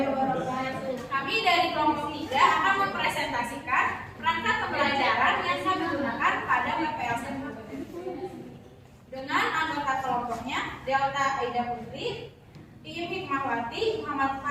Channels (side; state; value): both; identical; correlation 1.00